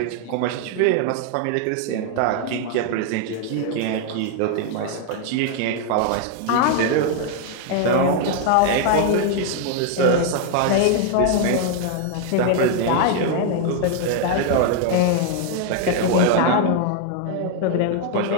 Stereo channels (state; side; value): different; both; correlation 0.00